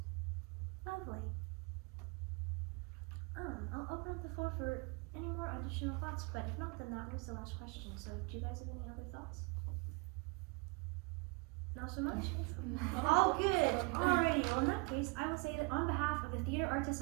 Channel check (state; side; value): quieter; left; 27.2 dB